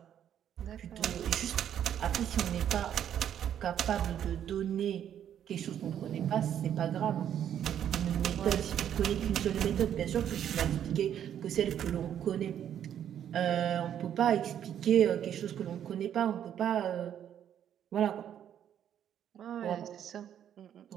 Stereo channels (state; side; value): quieter; left; 9.8 dB